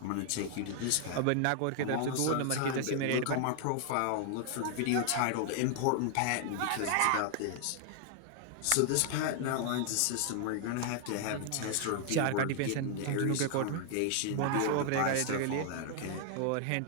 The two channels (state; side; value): different; both; correlation 0.00